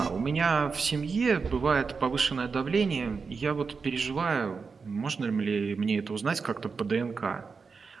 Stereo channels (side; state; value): left; quieter; 5.0 dB